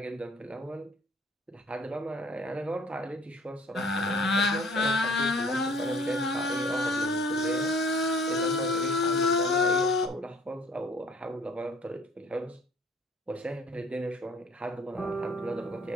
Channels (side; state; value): both; normal; correlation 0.54